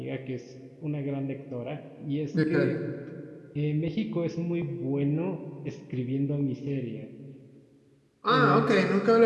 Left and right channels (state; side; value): identical; both; correlation 1.00